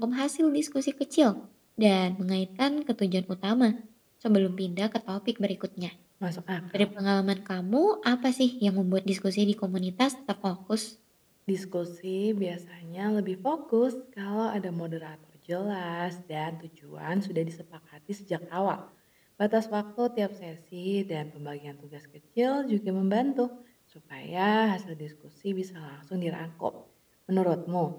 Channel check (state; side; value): identical; both; correlation 1.00